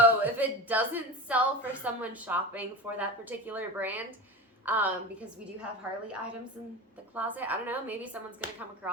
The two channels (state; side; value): normal; both; correlation 0.28